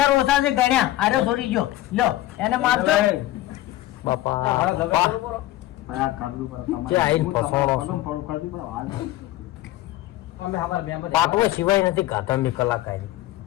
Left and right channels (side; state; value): right; quieter; 15.6 dB